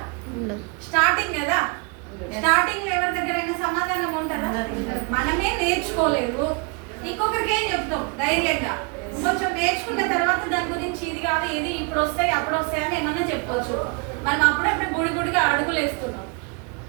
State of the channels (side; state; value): left; quieter; 31.8 dB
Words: స్టార్టింగ్ కదా, స్టార్టింగ్ ఎవరి దగ్గరైనా సమాధానం ఉంటుందా? మనమే నేర్చుకోలేదు, ఇంకొకరికి ఏం చెప్తాం ధైర్యంగా? కొంచెం నేర్చుకున్న తర్వాత దాని గురించి ఇది కాదు, ఇది ఇప్పుడు వస్తాయి అప్పుడు వస్తాయి అని ఏమన్నా చెప్పవచ్చు. మనం అప్పుడప్పుడు గుడిగా అడుగులు వేస్తున్నాం.